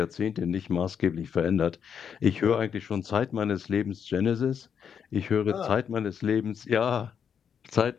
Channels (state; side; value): quieter; right; 7.6 dB